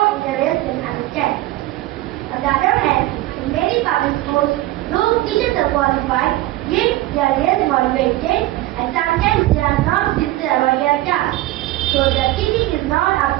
and understanding. On the other hand, in many public schools, those teachers are qualified, yet they are less motivated and sometimes they are not sincere about their task. So the teaching is not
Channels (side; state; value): left; quieter; 16.7 dB